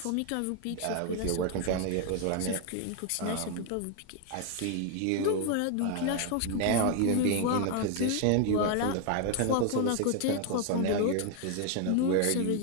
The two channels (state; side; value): different; both; correlation 0.01